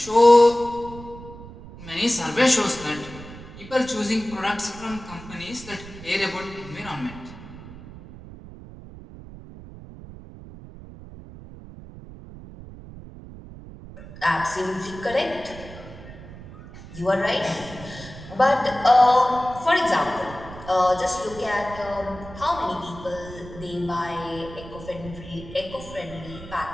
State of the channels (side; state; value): right; noise; rumble, 15 dB below the sound